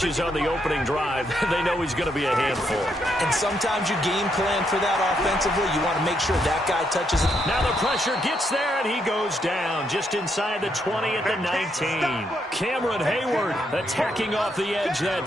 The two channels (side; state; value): both; normal; correlation 0.77